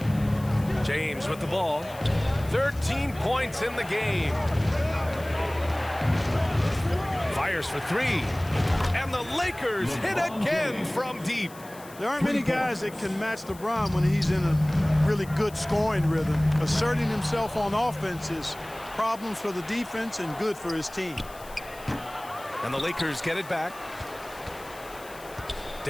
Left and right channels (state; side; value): noise; left; hiss, 20 dB below the sound